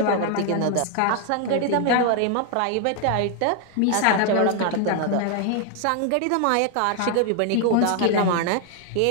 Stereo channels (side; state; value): both; different; correlation 0.00